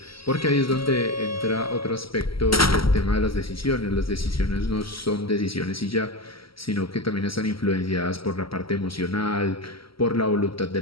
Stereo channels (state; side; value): late; right; 0.75 ms